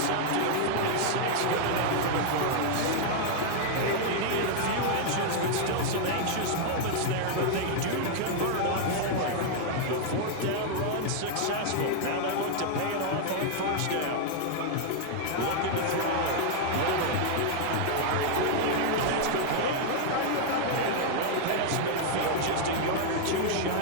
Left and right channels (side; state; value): both; different; correlation 0.00